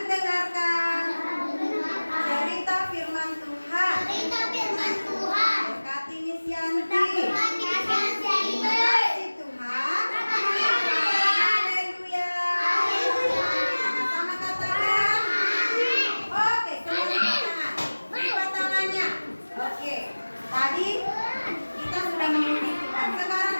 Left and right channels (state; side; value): inverted; both; correlation -1.00